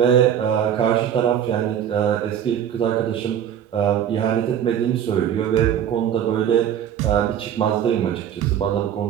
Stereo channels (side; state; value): left; quieter; 9.4 dB